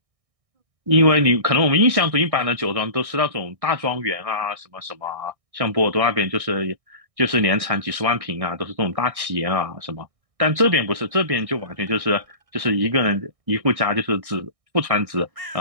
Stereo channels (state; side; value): late; left; 1.6 ms